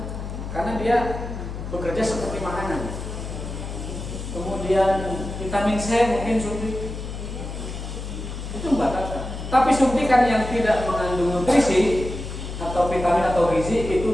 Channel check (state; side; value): noise; left; hum, 7 dB below the sound